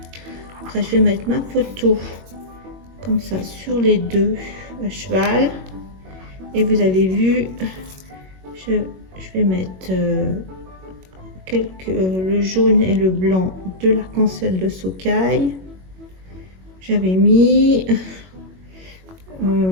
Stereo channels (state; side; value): late; left; 21 ms